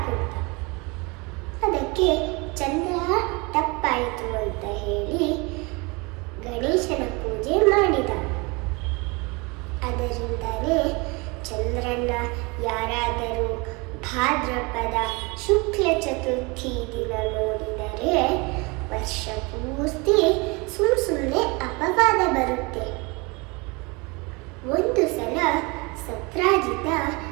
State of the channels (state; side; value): quieter; left; 27.4 dB